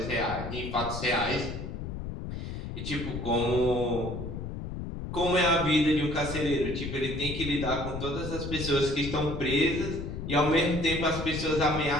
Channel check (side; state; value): left; noise; rumble, 6 dB below the sound